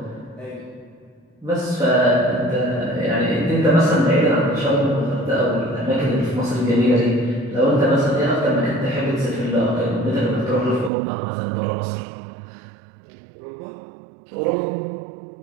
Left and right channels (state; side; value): drops out; left; at 10.9 s